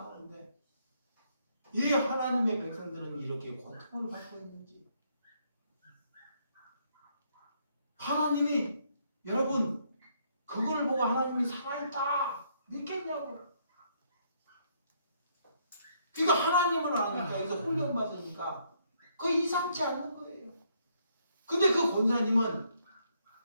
하는데 왜 하나님의 백성들은 이렇게 고통을 받고 있는지. 하나님이 여러분 그걸 보고 하나님이 살아있다 믿겠냐고. 그러니까 하나님을 아니까 여기서 훈련받으니까 그거 이상치 않은 거예요. 근데 그 권사님은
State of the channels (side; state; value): both; inverted; correlation -0.71